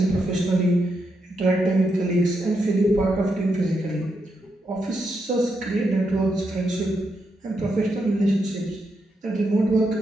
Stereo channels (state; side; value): normal; both; correlation 0.82